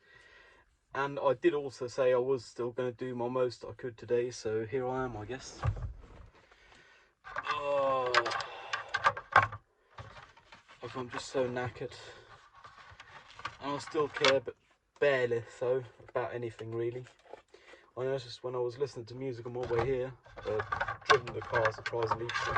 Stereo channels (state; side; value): identical; both; correlation 1.00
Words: And I did also say I was still going to do my most I could today, so here I am, I guess. Oh, I'm just so knackered. And I still care, but barely so, about anything really. I noticed when I was listening to music on my way here, driven the car surprisingly, you can